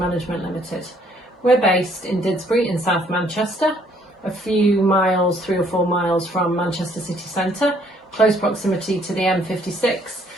Limited. We're based in Didsbury in South Manchester, a few miles, 3 or 4 miles from Manchester city centre, close proximity to the M56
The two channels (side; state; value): both; normal; correlation 0.64